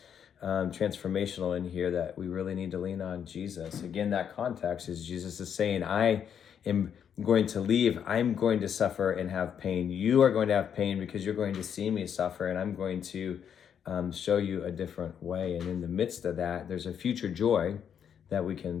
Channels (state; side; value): quieter; right; 8.3 dB